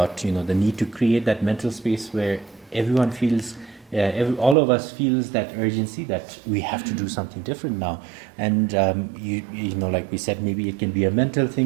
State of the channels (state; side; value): drops out; left; at 4.5 s